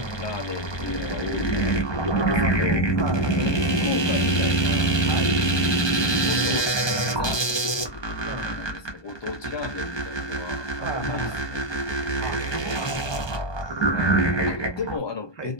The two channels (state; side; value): late; right; 1.2 ms